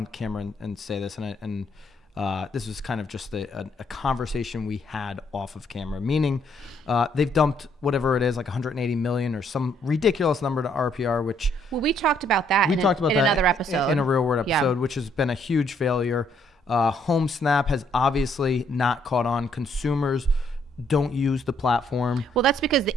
camera and say this, and this was kind of just a conversation we had off of camera, meaning they've dumped whatever it is, like 180 million or some ridiculous number to RPR, which... Well, we talked about that in another episode. In a Real Word episode, which has been a huge failure. HomeSnap has obviously not caught on. Consumers don't use the platform. Well, that's because the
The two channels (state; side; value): normal; both; correlation 0.69